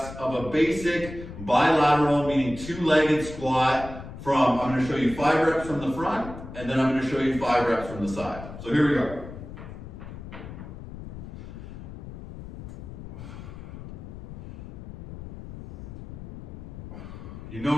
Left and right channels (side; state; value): left; noise; rumble, 12 dB below the sound